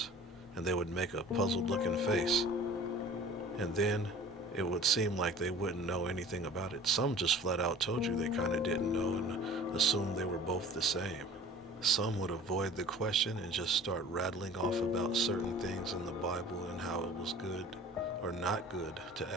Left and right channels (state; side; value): normal; both; correlation 0.45